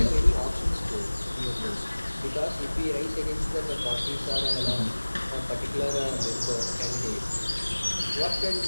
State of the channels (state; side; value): inverted; both; correlation -1.00